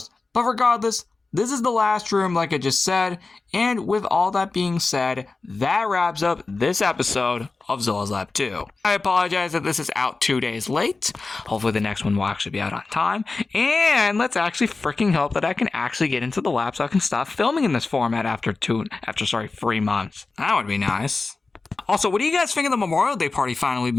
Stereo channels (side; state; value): right; quieter; 3.8 dB